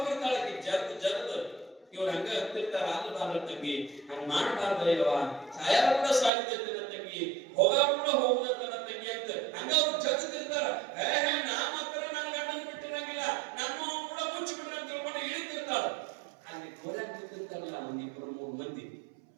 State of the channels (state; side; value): drops out; left; at 6.3 s